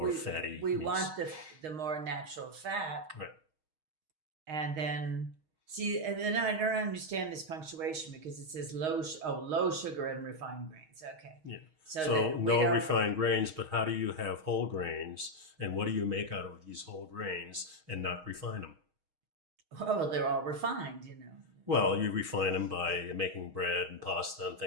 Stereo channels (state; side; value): late; left; 6.4 ms